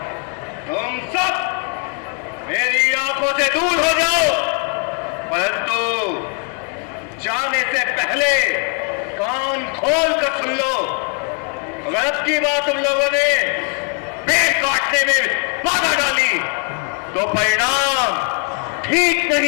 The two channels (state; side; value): quieter; right; 39.3 dB